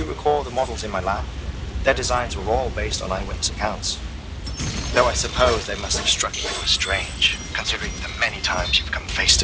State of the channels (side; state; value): both; identical; correlation 1.00